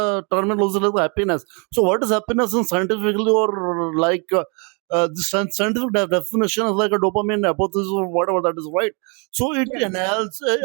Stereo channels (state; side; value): quieter; left; 34.4 dB